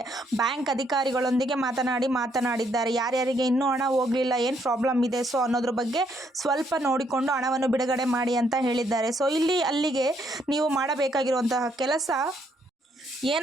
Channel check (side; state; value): both; normal; correlation 0.72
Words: ಬ್ಯಾಂಕ್ ಅಧಿಕಾರಿಗಳೊಂದಿಗೆ ಮಾತನಾಡಿದ್ದಾರೆ. ಯಾರ್ಯಾರಿಗೆ ಇನ್ನೂ ಹಣ ಹೋಗಲಿಲ್ಲ, ಏನು ಪ್ರಾಬ್ಲಮ್ ಇದೆ ಸೊ ಅನ್ನೋದ್ರ ಬಗ್ಗೆ ಸ್ವಲ್ಪ ನೋಡಿಕೊಂಡು ಹಣವನ್ನು ಬಿಡುಗಡೆ ಮಾಡಿ ಅಂತ ಹೇಳಿದ್ದಾರೆ. ಸೊ ಅಲ್ಲಿಗೆ ನೀವು ಮಾಡಬೇಕಾಗಿರುವಂತಹ ಕೆಲಸ